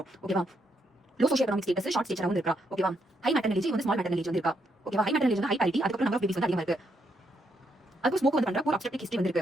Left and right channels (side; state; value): both; normal; correlation 0.77